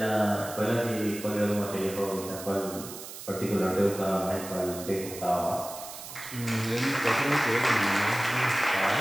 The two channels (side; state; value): right; noise; hiss, 12 dB below the sound